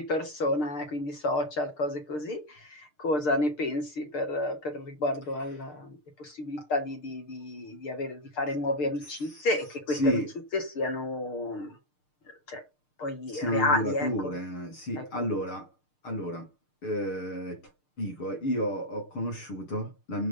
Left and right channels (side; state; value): right; late; 6.6 ms